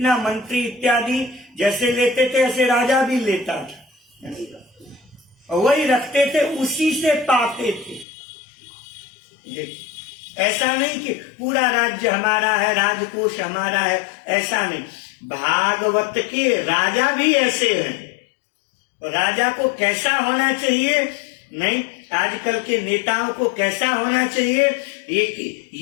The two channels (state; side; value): drops out; right; at 8.1 s